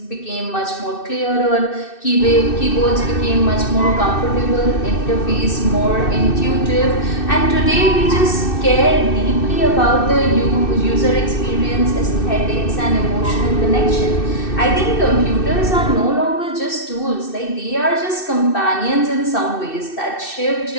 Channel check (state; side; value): late; right; 2.6 ms